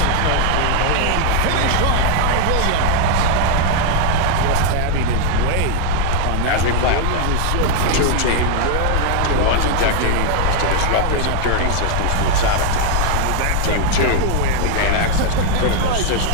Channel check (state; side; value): different; both; correlation 0.00